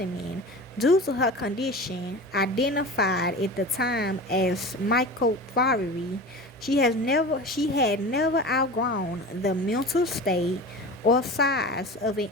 due to her condition, identified at the time as microphobia. She had never outgrown the mental state or size of an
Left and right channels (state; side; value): normal; both; correlation 0.33